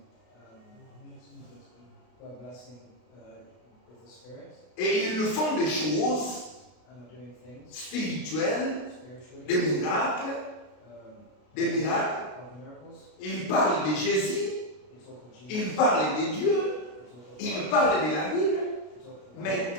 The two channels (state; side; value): late; right; 32 ms